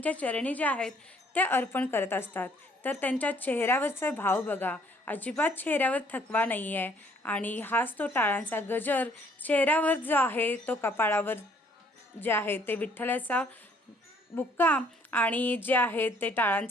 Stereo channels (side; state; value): both; normal; correlation 0.62